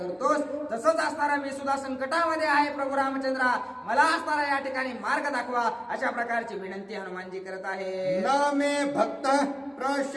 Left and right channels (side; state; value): both; identical; correlation 1.00